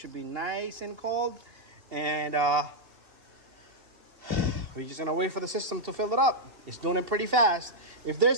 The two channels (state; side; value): late; left; 2.7 ms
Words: be nice and cold. And we're just gonna wait for the system to fill it up. It's doing it pretty fast. If there's